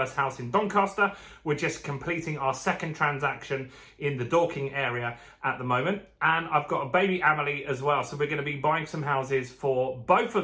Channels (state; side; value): identical; both; correlation 1.00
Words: house in Doncaster. We're just completing our second transaction in the Dorking area at the moment. And I've got a baby Amelie as well. So we're going to be buying some houses for both